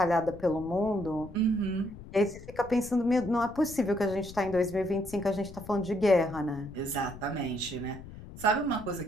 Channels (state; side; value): noise; left; rumble, 15 dB below the sound